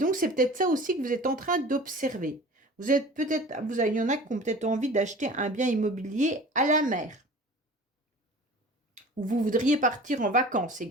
c'est peut-être ça aussi que vous êtes en train d'observer. Vous êtes peut-être, il y en a qui ont peut-être envie d'acheter un bien immobilier à la mer. Ou vous voudriez partir en vacances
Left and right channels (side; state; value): both; normal; correlation 0.41